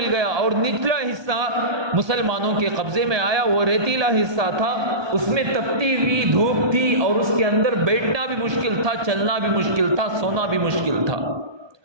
گیا، اور نچلا حصہ مسلمانوں کے قبضے میں آیا۔ وہ ریتیلا حصہ تھا، اس میں تپتی ہوئی دھوپ تھی، اور اس کے اندر بیٹھنا بھی مشکل تھا، چلنا بھی مشکل تھا، سونا بھی مشکل تھا۔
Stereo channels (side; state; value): left; late; 1.2 ms